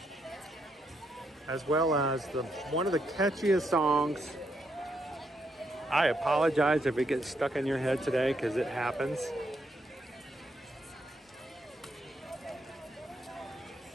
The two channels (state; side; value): normal; both; correlation 0.77